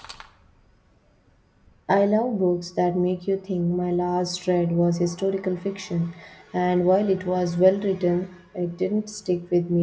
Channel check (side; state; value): both; identical; correlation 1.00